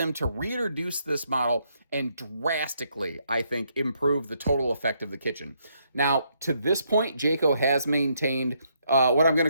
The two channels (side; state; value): both; inverted; correlation -0.74